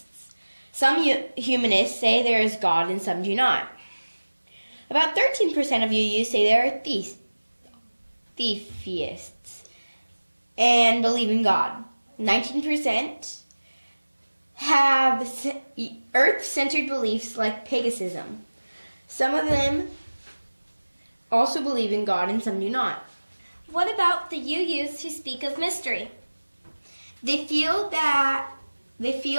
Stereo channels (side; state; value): both; inverted; correlation -1.00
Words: Some humanists say there is God and some do not. About 13% of UUs say they are theists and believe in God. 19% have earth-centered beliefs like paganism. Some of them also believe in God and some do not. What about the UUs who speak of mystery? They feel